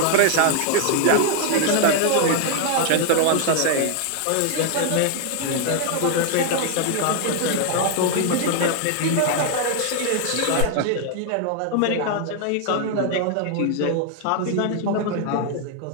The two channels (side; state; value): both; different; correlation 0.00